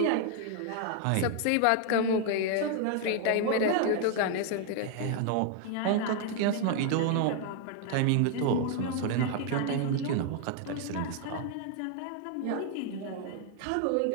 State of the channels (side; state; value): both; different; correlation 0.00